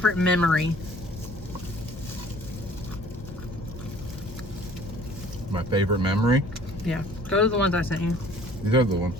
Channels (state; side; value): normal; both; correlation 0.52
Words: memory? My favorite memory? Yeah. Go to the ones I sent you. These are the ones